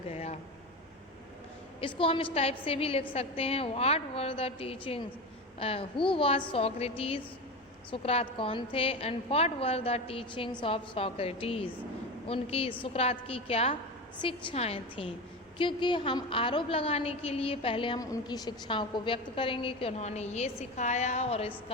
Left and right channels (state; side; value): normal; both; correlation 0.24